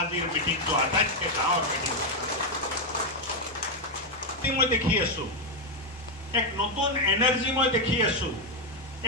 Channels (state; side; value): normal; both; correlation 0.03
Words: মিটিংটো আটাইতকৈ ডাঙৰ মিটিং মই দেখি আছো এক নতুন এনাৰ্জি মই দেখি আছো